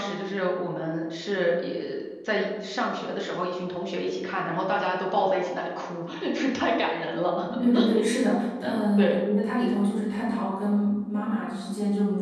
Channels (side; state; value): both; identical; correlation 1.00